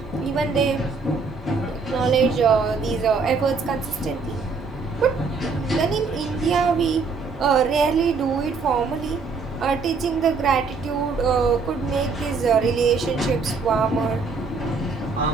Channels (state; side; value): quieter; left; 4.6 dB